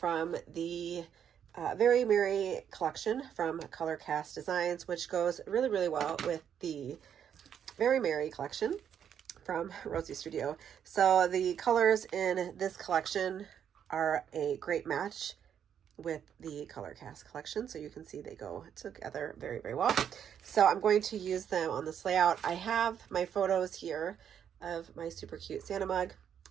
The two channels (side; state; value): left; quieter; 8.7 dB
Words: the Very Merry collection from Colorcast Designs, which goes really well with the Very Merry collection from Rosie Studio. So the colors in this collection are a great match with the Colorcast collection, so you can see they go together very well. So I'm going to use them on this layout. I have my photos here of my super cute Santa mug,